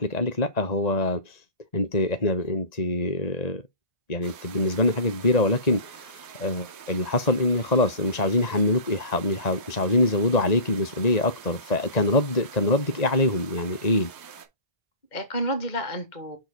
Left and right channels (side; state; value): right; late; 1.9 ms